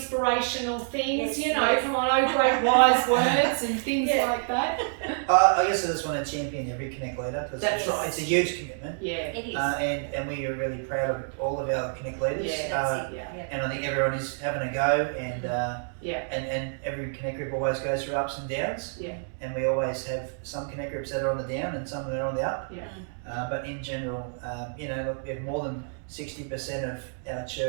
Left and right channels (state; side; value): silent; left; 59 dB below the other